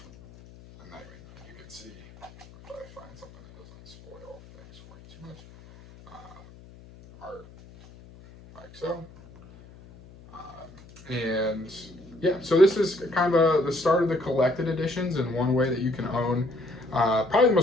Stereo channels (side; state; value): left; noise; hum, 21 dB below the sound